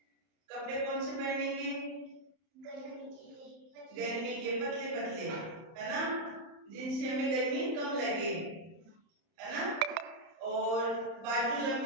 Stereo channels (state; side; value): late; left; 31 ms